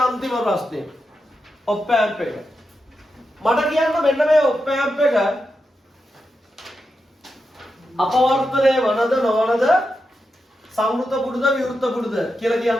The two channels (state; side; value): normal; both; correlation 0.88